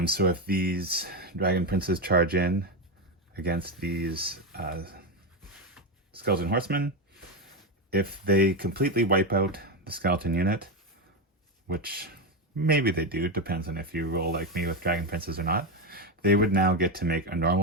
So if these Dragon Princes charge in against these Skeleton Horsemen, if they completely wipe out the skeleton unit, which maybe they do, depends on if you roll like me with Dragon Princes or not, they would now get to make a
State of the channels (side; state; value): both; normal; correlation 0.11